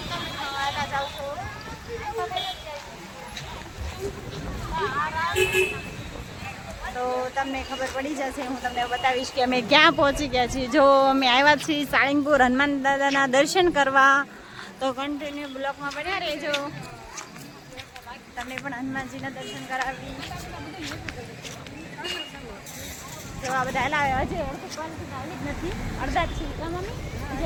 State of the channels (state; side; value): identical; both; correlation 1.00